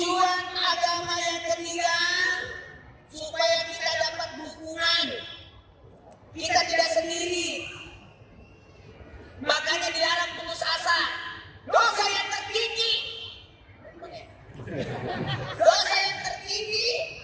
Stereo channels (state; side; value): identical; both; correlation 1.00